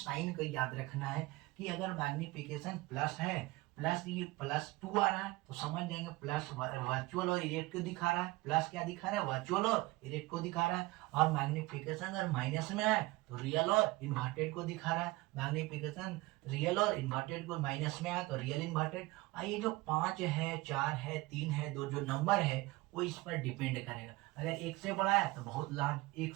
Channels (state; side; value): quieter; left; 20.9 dB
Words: को याद रखना है कि अगर मैग्निफिकेशन प्लस है, प्लस ये +2 आ रहा है तो समझ जाएंगे प्लस वर्चुअल और इरेक्ट को दिखा रहा है, प्लस क्या दिखा रहा है, वर्चुअल और इरेक्ट को दिखा रहा है। और मैग्निफिकेशन अगर माइनस में आए तो रियल और इन्वर्टेड को दिखा रहा है, मैग्निफिकेशन रियल और इन्वर्टेड को माइनस में आया तो रियल इन्वर्टेड। और ये जो 5 है, 4 है, 3 है, 2 जो नंबर है वो इस पर डिपेंड करेगा। अगर 1 से बड़ा है तो बहुत लार्ज,